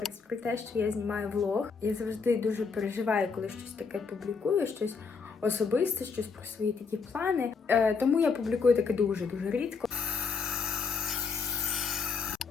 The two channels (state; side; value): quieter; right; 5.2 dB